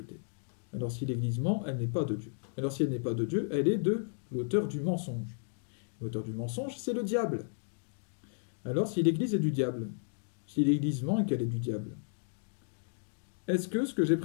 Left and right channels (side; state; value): right; silent; digital silence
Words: Alors si l'Église ment, elle n'est pas de Dieu. Alors si elle n'est pas de Dieu, elle est de l'auteur du mensonge. L'auteur du mensonge, c'est le diable. Alors si l'Église est du diable, si l'Église ment et qu'elle est du diable, est-ce que ce que j'ai